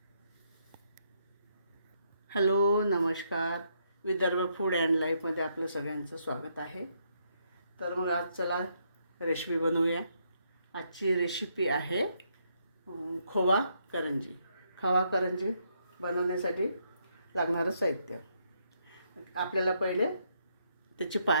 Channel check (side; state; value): both; inverted; correlation -0.75